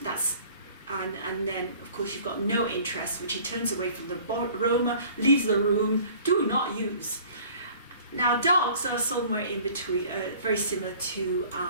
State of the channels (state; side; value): inverted; both; correlation -0.49